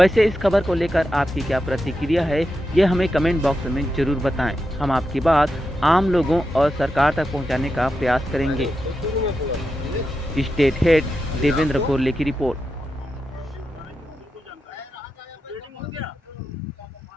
इस खबर को लेकर आपकी क्या प्रतिक्रिया है, ये हमें कमेंट बॉक्स में जरूर बताएं। हम आपकी बात आम लोगों और सरकार तक पहुंचाने का प्रयास करेंगे। स्टेट हेड देवेंद्र गोरले की रिपोर्ट।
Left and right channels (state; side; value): normal; both; correlation 0.88